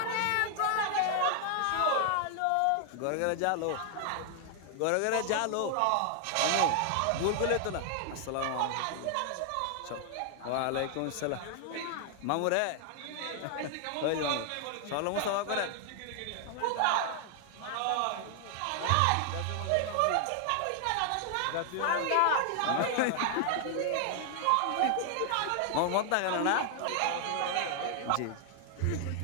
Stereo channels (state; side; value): different; both; correlation 0.00